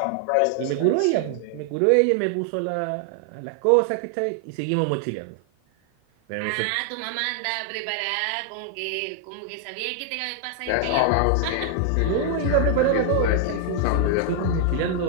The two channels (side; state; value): both; different; correlation 0.00